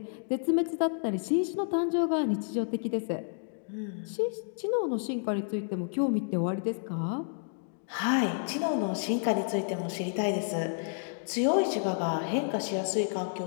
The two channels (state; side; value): silent; right; digital silence